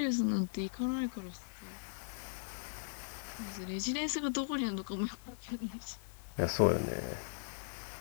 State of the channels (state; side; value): silent; right; digital silence